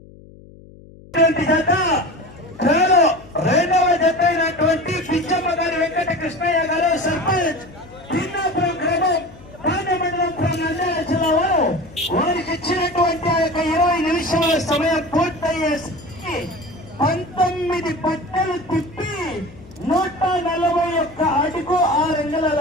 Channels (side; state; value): left; noise; hum, 21 dB below the sound